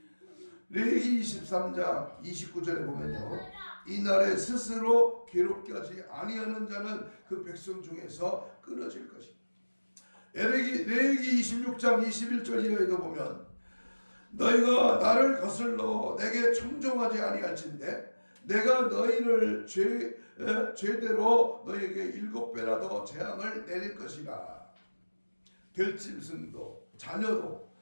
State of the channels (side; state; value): both; inverted; correlation -1.00